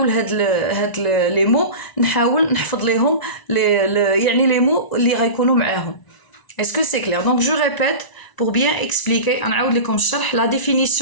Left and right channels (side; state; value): right; late; 1.0 ms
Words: هاد لي مو نحاول نحفظ ليهم يعني لي مو اللي غيكونوا معاهم اسكو سي كلير دونك جو ريبيت pour bien expliquer نعاود لكم الشرح la